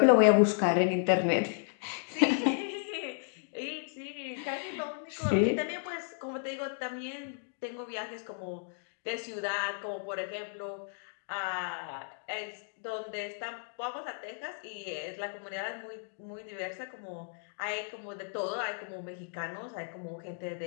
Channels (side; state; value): right; silent; digital silence